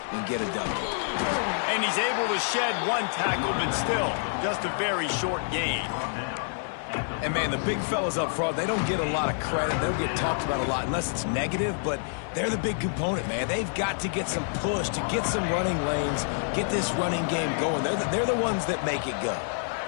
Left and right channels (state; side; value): silent; right; digital silence